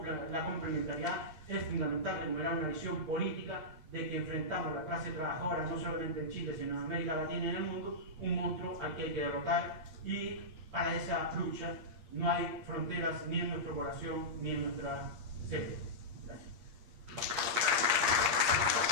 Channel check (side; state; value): left; late; 9.2 ms